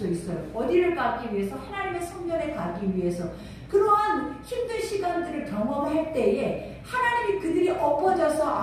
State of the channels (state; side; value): identical; both; correlation 1.00